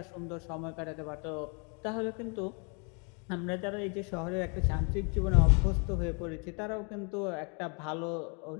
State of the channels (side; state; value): right; quieter; 36.4 dB